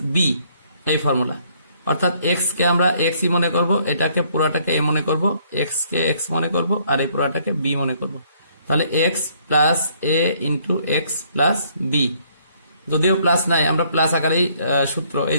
B, এই ফর্মুলা। অর্থাৎ এক্স কে আমরা এক্স ই মনে করব, এটাকে পুরাটাকে এ মনে করব, এক্স কে এক্স মনে করব, আর এই পুরাটাকে বি মনে করব। তাহলে x plus A into X plus B, যদিও প্লাস নাই আমরা প্লাস আকারেই সূত্র, এই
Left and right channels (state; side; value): inverted; both; correlation -0.65